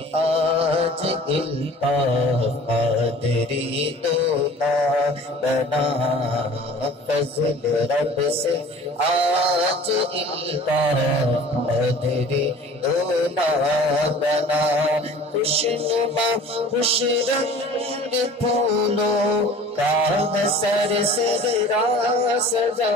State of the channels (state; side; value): normal; both; correlation 0.45